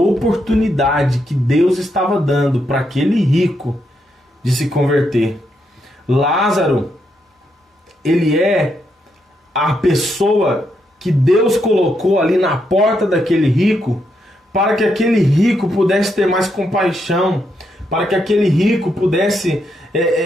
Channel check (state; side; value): normal; both; correlation 0.80